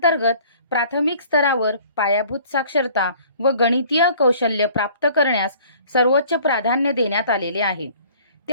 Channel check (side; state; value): both; inverted; correlation -0.52